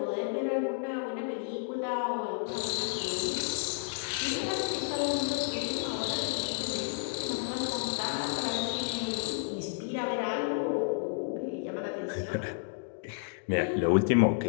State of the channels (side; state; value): right; silent; digital silence